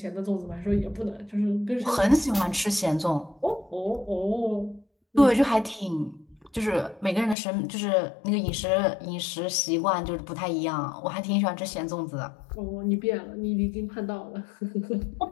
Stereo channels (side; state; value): right; drops out; at 7.4 s